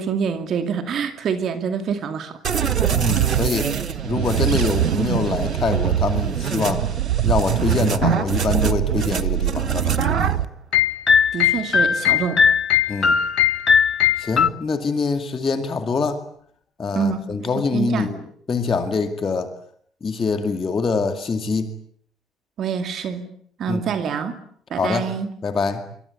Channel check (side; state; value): both; normal; correlation 0.44